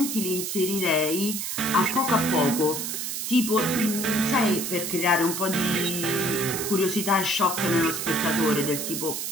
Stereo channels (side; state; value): right; noise; hiss, 3 dB below the sound